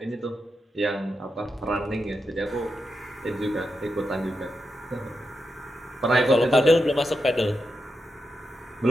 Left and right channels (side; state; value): both; normal; correlation 0.87